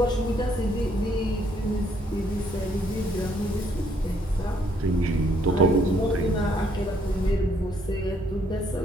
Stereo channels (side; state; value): both; normal; correlation 0.68